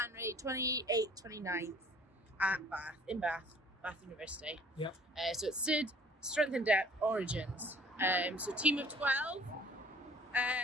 28th, 29th at Bath University. Yep. So it's SID, Strength and Depth, Origins. So team of 12.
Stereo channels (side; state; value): both; normal; correlation 0.53